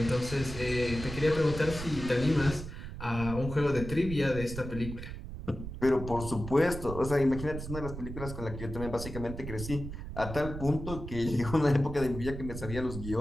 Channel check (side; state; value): right; noise; rumble, 8 dB below the sound